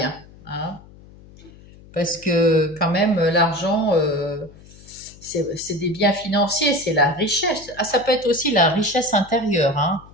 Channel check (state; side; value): noise; left; hum, 22 dB below the sound